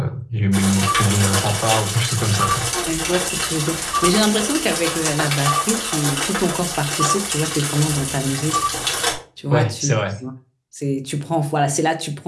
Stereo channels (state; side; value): identical; both; correlation 1.00